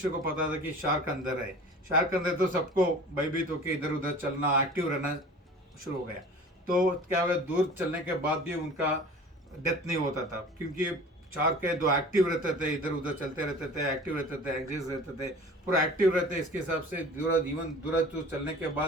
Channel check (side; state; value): both; normal; correlation 0.42